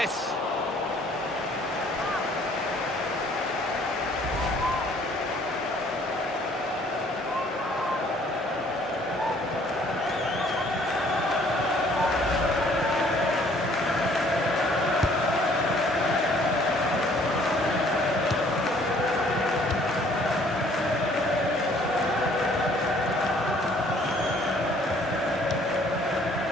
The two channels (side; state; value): both; normal; correlation 0.59